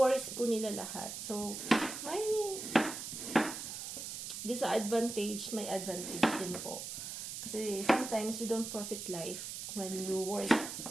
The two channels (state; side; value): noise; right; hiss, 7 dB below the sound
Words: po nila lahat. So, may disadvantage, may advantage din po. Kasi sometimes you don't profit life when you work.